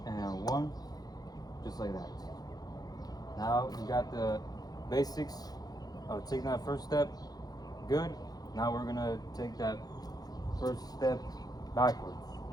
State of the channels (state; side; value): late; right; 0.19 ms